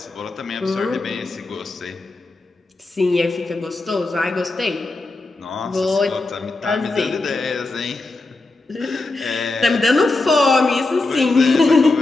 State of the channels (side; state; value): right; quieter; 3.2 dB